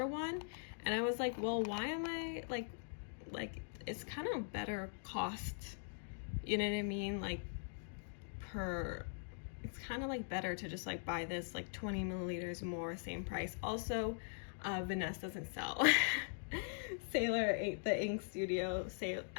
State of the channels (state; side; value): silent; right; digital silence